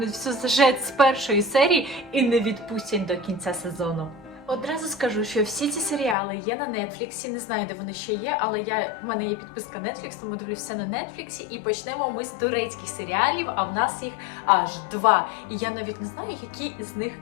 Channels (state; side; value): drops out; right; at 6.2 s